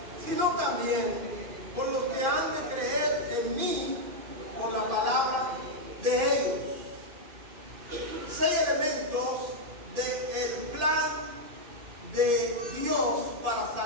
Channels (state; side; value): late; left; 2.5 ms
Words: sino también por los que han de creer en mí por la palabra de ellos. 6 elementos de Dios para